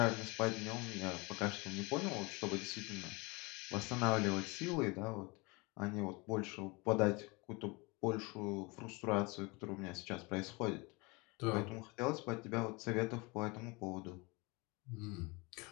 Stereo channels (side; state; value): right; quieter; 26.8 dB